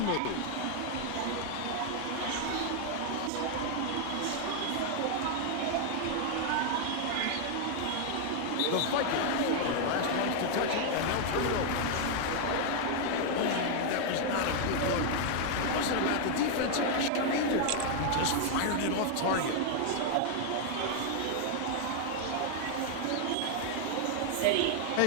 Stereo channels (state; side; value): different; both; correlation 0.00